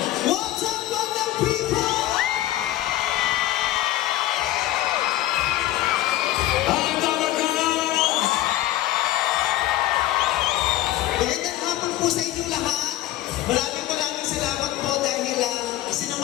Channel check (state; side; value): quieter; right; 14.8 dB